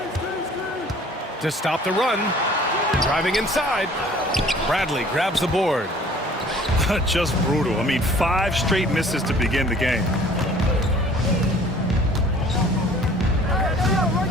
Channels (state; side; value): normal; both; correlation 0.52